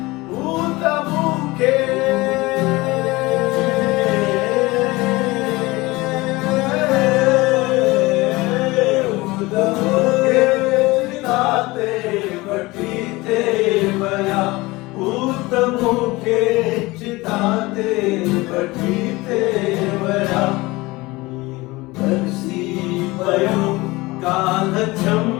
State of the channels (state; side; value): quieter; right; 21.6 dB